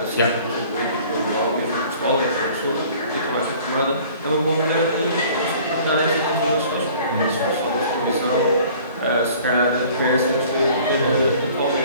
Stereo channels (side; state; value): both; inverted; correlation -0.50